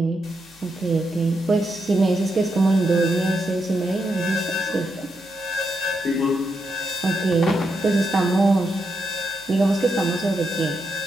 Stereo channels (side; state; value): both; normal; correlation 0.83